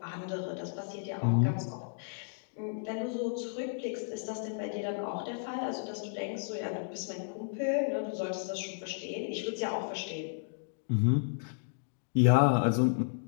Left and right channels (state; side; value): silent; right; digital silence